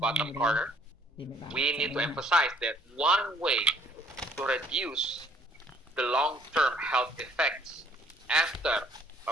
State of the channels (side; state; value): both; normal; correlation 0.61